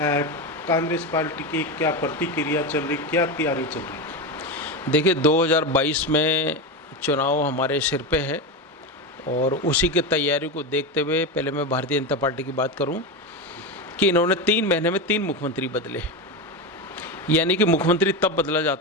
कांग्रेस पार्टी की क्या प्रतिक्रिया चल रही, क्या तैयारी चल रही? देखिए 2022 में चुनाव हमारे सिर पे है और उसी की तैयारी को देखते हुए पहले मैं भारतीय जनता पार्टी की बात करूं कि इन्होंने 3 महीने में 3 मुख्यमंत्री बदले। यानी कि मुख्यमंत्री तब बदला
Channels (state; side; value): normal; both; correlation 0.16